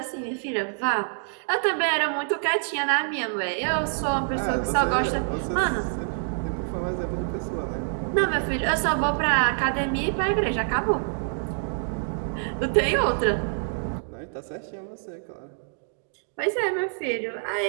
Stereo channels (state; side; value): silent; left; digital silence